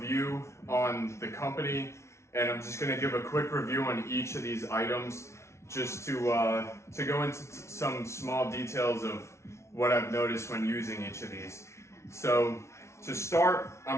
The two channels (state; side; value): late; right; 0.13 ms